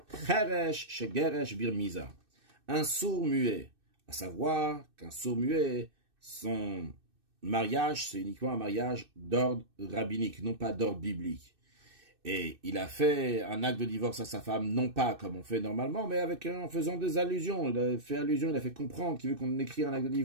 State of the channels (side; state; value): left; late; 2.6 ms